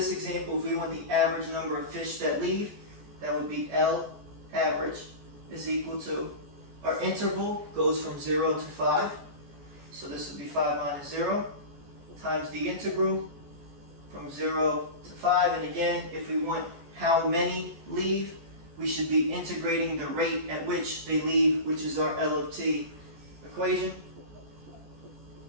example, if we want the average number of fish that leave, that would be L average is equal to, our interval goes from 0 to 5, so this would be 5 minus 0, times the integral from 0 to 5. And again, if we want how many leave, we should be integrating the rate at which they leave, which is our L of t equation.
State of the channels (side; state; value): left; late; 14 ms